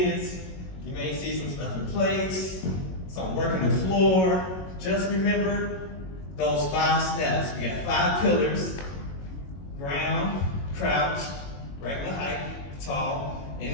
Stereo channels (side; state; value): right; late; 22 ms